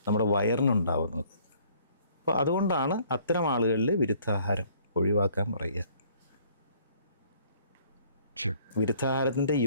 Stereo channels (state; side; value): inverted; both; correlation -0.60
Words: നമ്മുടെ വയറിനുണ്ടാവുന്നത്. അപ്പോൾ അതുകൊണ്ടാണ് അത്തരം ആളുകളിൽ വിരുദ്ധാഹാരം ഒഴിവാക്കാൻ പറയുക. വിരുദ്ധാഹാരത്തിൻ്റെ